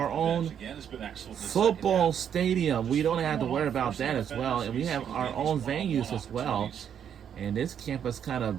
own football stadium. We don't have to worry about that as well. And we have our own venues as well. And this campus kind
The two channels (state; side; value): quieter; left; 8.7 dB